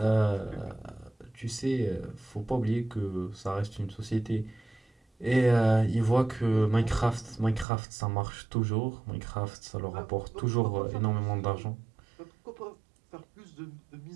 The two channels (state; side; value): drops out; left; at 7.7 s